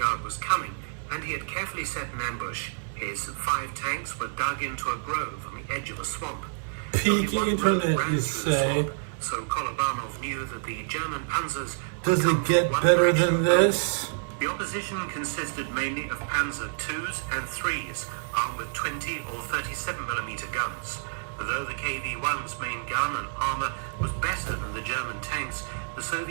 was coming, and he had carefully set an ambush. His 5 tanks were dug into a grove on the edge of a swamp. Peak Only one internet, road ran you through the say? swamp, so Kolobanov knew that the German panzers Does would come it get from one better direction than only. this? The opposition consisted mainly of Panzer IIs and IIIs, armed with 20 or 37mm guns. Although the KV-1's main gun and armor was better than the German tanks, the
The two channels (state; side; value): silent; left; 59 dB below the other